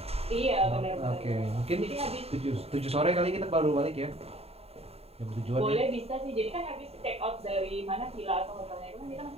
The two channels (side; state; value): left; late; 0.29 ms